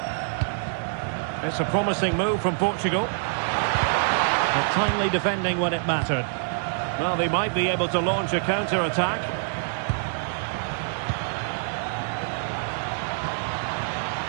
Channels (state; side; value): silent; left; digital silence